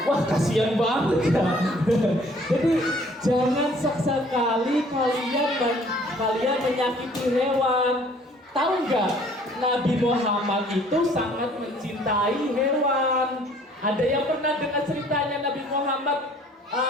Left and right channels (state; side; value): normal; both; correlation 0.57